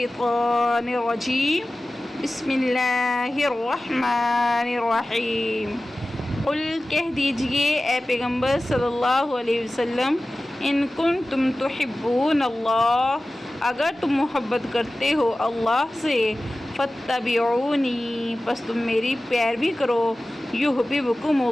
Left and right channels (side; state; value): both; normal; correlation 0.96